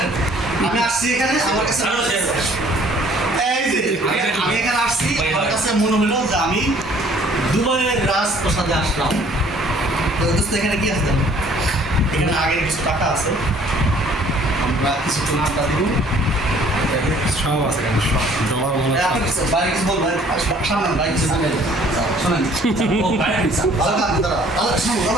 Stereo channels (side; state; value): both; normal; correlation 0.57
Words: আমি আসছি এখানে আমার কাছে এই যে আমি এখানে আসছি আমার কাছে মনে হলো যে আমি দুবাইয়ের রাজপ্রাসাদে আসলাম। তো দোস্ত এখানে কি আছে জানো? এখানে আগের কিছু টাকা আছে, আমরা কিছুক্ষণ আড্ডা দিব। সব আছে কেন সব জমা মনে আপনি কিছু বাইরে কিছু বলবেন, সামনে বাইরে কিছু বলবেন, শোনেন ভালো কাজ দাদা দাদা শুনুন